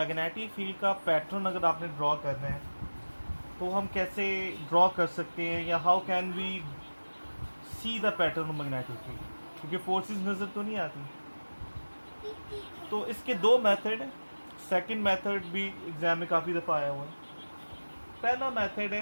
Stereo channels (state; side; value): inverted; both; correlation -1.00